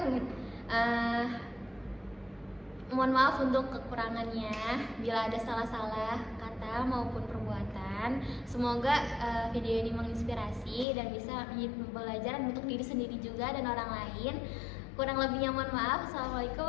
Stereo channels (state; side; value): drops out; right; at 10.9 s